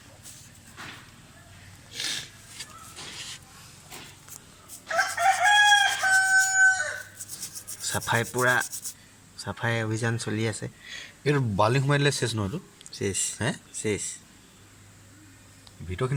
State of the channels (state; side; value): identical; both; correlation 1.00